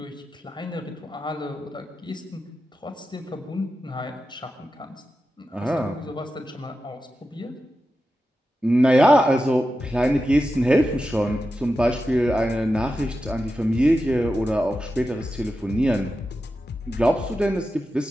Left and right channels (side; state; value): both; normal; correlation 0.91